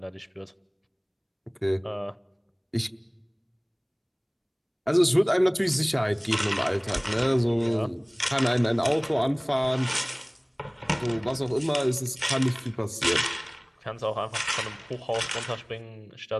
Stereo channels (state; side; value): identical; both; correlation 1.00